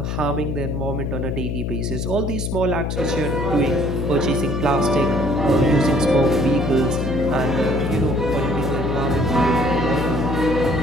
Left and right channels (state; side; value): noise; left; hum, 2 dB below the sound